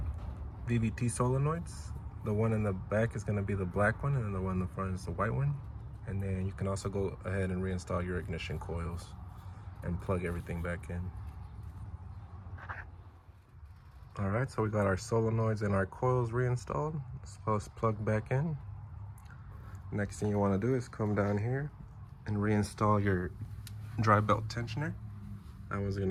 VVT solenoids. The one in the back is going to be the black one, and then the one in the front is the white one. And then you can also go ahead and reinstall your ignition coils and plug everything back in. All right, so we got our solenoids and our coils reinstalled, as well as plugged back in. Next thing you want to do is come down here and reinstall your dry belt tensioner. That one's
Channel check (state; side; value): identical; both; correlation 1.00